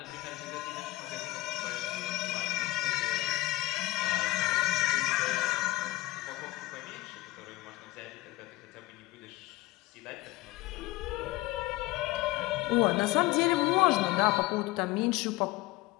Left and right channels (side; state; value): right; quieter; 19.2 dB